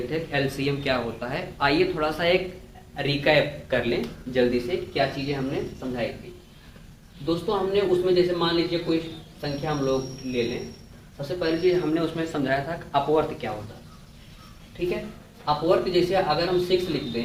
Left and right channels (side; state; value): both; identical; correlation 1.00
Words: थे एलसीएम क्या होता है, आइए थोड़ा सा एक रिकैप कर लें जल्दी से क्या चीज़ें हमने समझाई थी। दोस्तों हमने उसमें जैसे मान लीजिए कोई संख्या हम लोग ले लें, सबसे पहली चीज़ हमने उसमें समझाया था अपवर्त क्या होता है। ठीक है, अपवर्त जैसे अगर हम 6 लिख